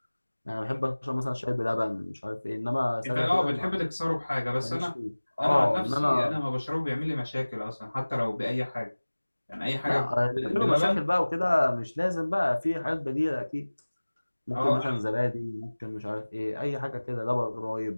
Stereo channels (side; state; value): both; inverted; correlation -1.00